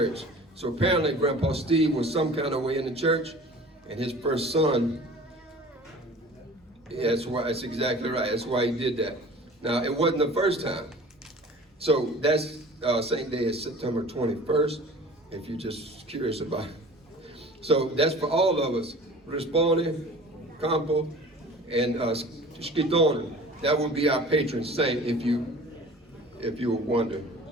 So apparently Grandpa Steve was some kind of way in the church, and his first son, yeah, that's exactly right. That's why he did that. Now, it wasn't the first time. So that's Saint Day is September 21st, if you're just curious about it. So that's for all of us. Rispone, Campo, and Schittone. That would be our patron saint if you were wondering.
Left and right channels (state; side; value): normal; both; correlation 0.44